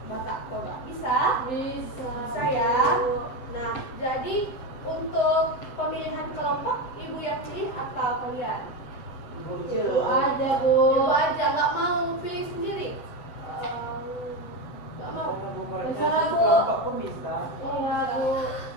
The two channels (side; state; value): right; late; 7.7 ms